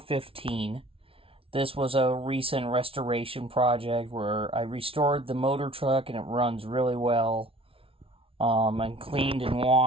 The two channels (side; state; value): left; late; 0.26 ms